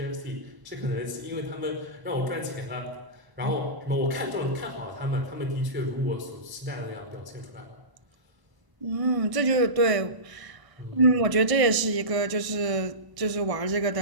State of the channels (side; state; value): left; late; 1.0 ms